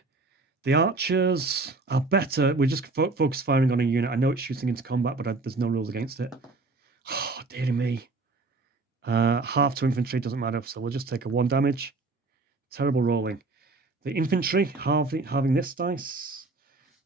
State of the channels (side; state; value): left; quieter; 3.6 dB